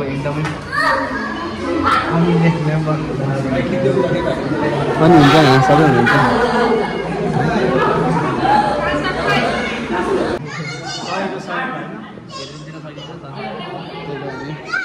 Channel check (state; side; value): identical; both; correlation 1.00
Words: पनि हुन्छ यहाँ सबै हुनुहुन्छ